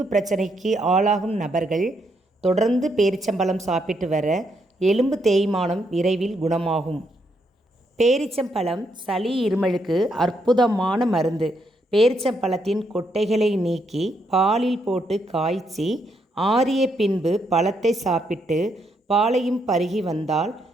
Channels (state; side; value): normal; both; correlation 0.77